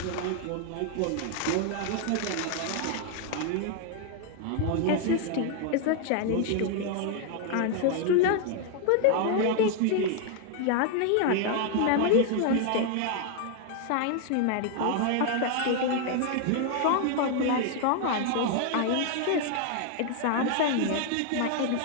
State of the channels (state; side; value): different; both; correlation 0.00